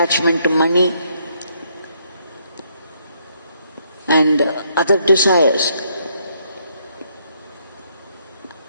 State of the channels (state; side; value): inverted; both; correlation -0.71